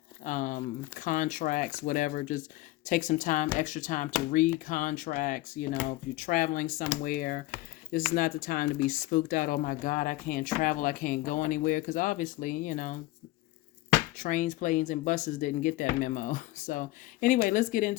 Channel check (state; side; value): quieter; right; 18.1 dB